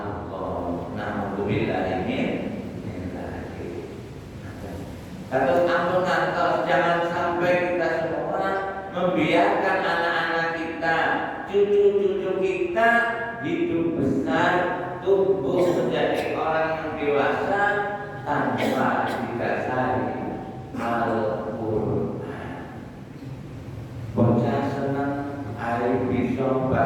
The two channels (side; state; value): both; identical; correlation 1.00